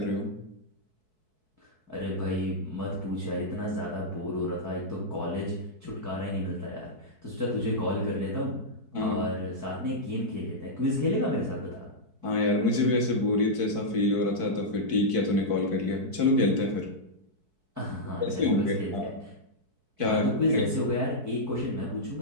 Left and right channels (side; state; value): left; late; 4.6 ms